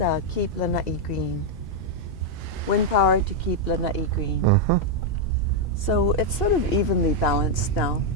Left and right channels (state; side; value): normal; both; correlation -0.01